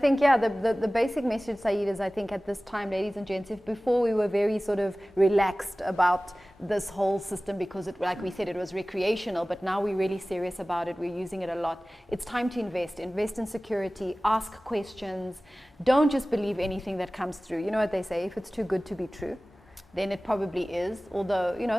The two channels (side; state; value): both; normal; correlation 0.98